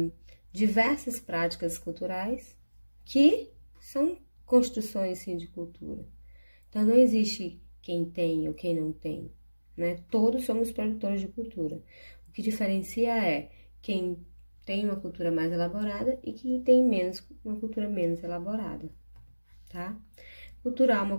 diversas práticas culturais que são construções, sim, de cultura. Então, não existe quem tem ou quem não tem, né? Todos somos produtores de cultura. O que diferencia é quem tem uma cultura mais elaborada e quem tem uma cultura menos elaborada, tá? Cultura alma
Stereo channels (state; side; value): inverted; both; correlation -1.00